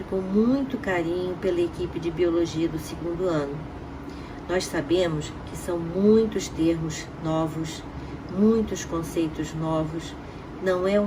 com muito carinho pela equipe de biologia do 2º ano. Nós sabemos que são muitos termos novos, muitos conceitos novos, não é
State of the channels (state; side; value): identical; both; correlation 1.00